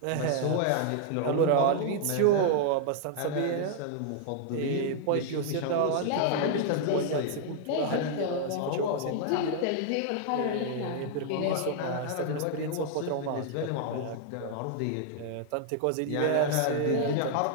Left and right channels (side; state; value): both; different; correlation 0.00